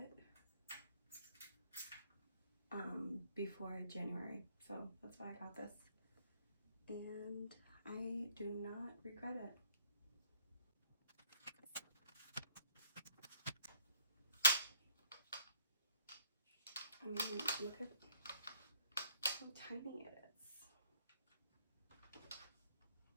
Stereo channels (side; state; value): both; inverted; correlation -0.64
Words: before January, so that's why I got this, and I do not regret it. I mean, look at how tiny it is.